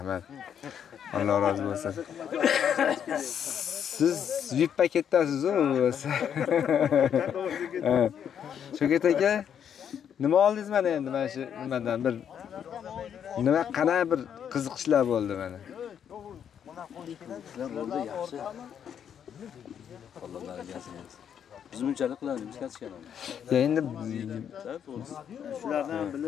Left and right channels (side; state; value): right; quieter; 8.6 dB